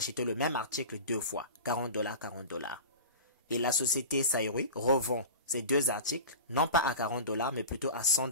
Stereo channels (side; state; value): both; inverted; correlation -0.32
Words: le même article 2 fois, 40 $, 40 $. Et la société Saïroui revend ces 2 articles, non pas à 40 $ mais plutôt à 100